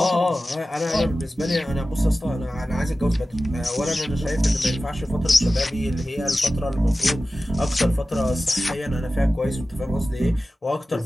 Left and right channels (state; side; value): normal; both; correlation 0.95